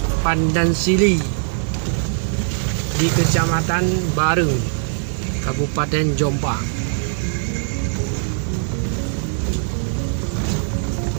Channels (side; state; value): left; silent; digital silence